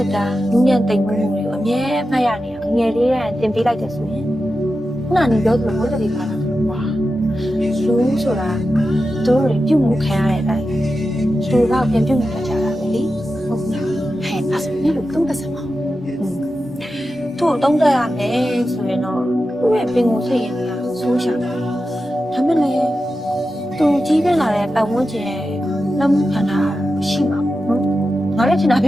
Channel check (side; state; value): both; normal; correlation 0.91